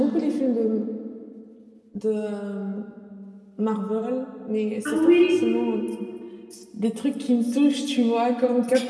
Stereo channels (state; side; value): identical; both; correlation 1.00